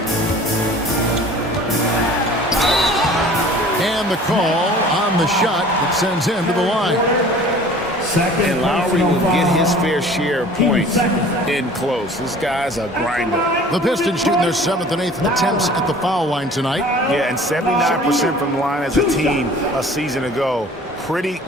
And the call on the shot that sends him to the line. And Lowry will get his fair share of points in close. This guy's a grinder. The Pistons shooting their 7th and 8th attempts at the foul line tonight. Yeah, and 79% from the line as a team a season ago. Pretty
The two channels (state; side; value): normal; both; correlation 0.47